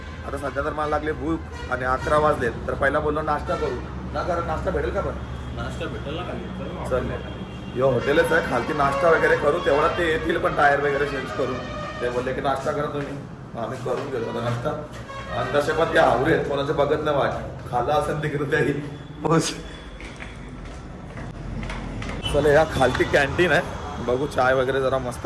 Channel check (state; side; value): identical; both; correlation 1.00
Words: आता सध्या तर मला लागले भूक आणि 11 वाजलेत. तर पहिला बोललो नाश्ता करू ना. कारण नाश्ता भेटेल का? पण नाश्ता भेटेल ना. चल यो हॉटेलच आहे खालती. नाश्ता वगैरे करू तेवढा ते येतील पण टायर वगैरे चेंज करून. ते बोलले की नाश्ता करा तुम्ही. आम्ही करून घेतो आता नाश्ता. आणि तसे पण ते आवरे आहेत कोणाचं बघत नाही वाट. खाल्ला असेल तिकडे त्याही. चल या खालती कॅन्टीन आहे. बघू चाय वगैरे जरा मस्त